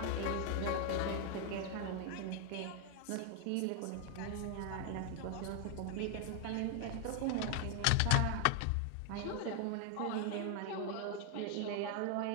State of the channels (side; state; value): both; different; correlation 0.00